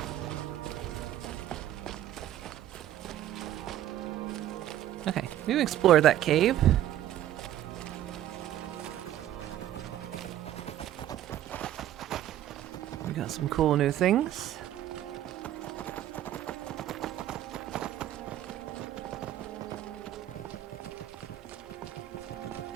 Okay, we've explored that cave. We got some cool new things.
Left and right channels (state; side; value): quieter; left; 12.5 dB